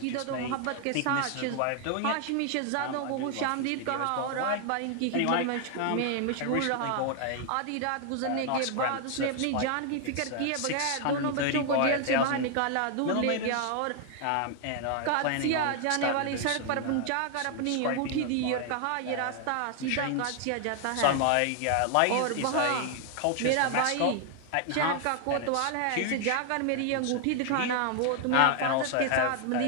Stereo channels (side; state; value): both; different; correlation 0.00